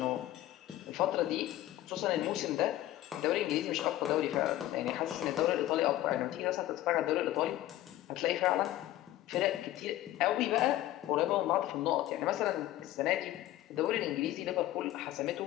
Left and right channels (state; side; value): quieter; right; 14.6 dB